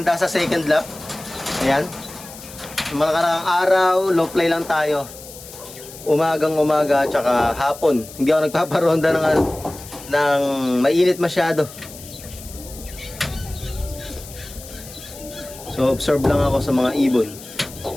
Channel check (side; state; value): left; noise; hiss, 16 dB below the sound